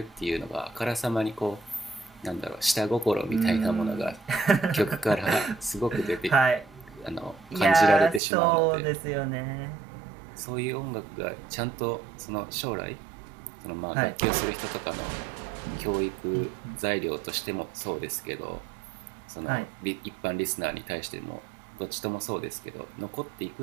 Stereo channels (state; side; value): drops out; left; at 8.2 s